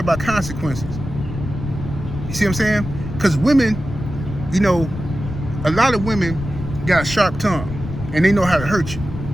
about consequences. You see what I'm saying? Because women, you know, a lot of women got a sharp tongue, and they know how to hurt you.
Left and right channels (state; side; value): noise; left; rumble, 8 dB below the sound